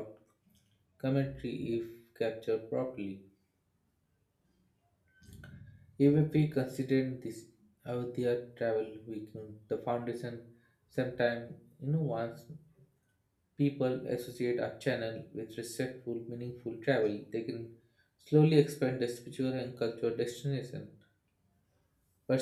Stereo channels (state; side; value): identical; both; correlation 1.00